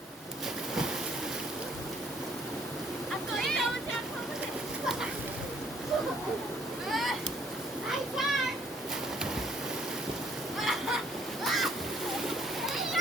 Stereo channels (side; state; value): both; normal; correlation 0.63